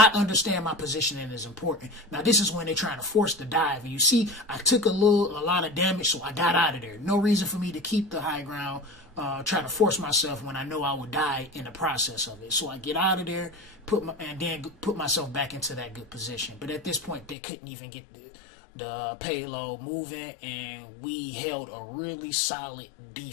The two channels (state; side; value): drops out; right; at 17.4 s